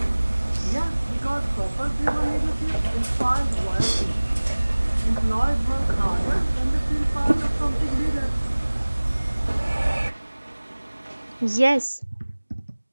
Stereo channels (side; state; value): both; inverted; correlation -1.00